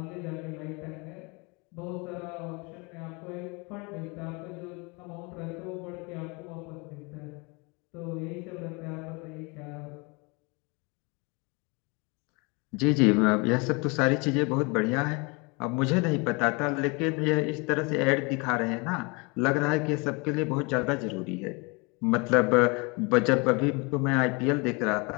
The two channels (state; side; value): quieter; right; 29.1 dB